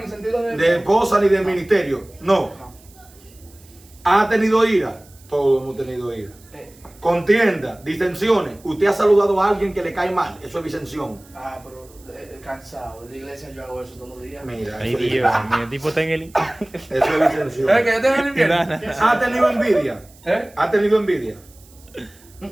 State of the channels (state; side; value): noise; right; hiss, 26 dB below the sound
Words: el sentido de... De esposa ni del ministerio. No. No. ¿Ha tenido ira? Todos hemos tenido ira. Contienda, disensiones. Usted ha saludado a alguien que le cae mal. Eso es disensión. Pero cansado. En la iglesia yo hago eso todos los días. Mira, Ay, eso es, Dios mío, el tipo está en el. eso es disensión. Es que yo tengo el invierno. ¿Ha tenido envidia? ¿Eh? ¿Ha tenido envidia?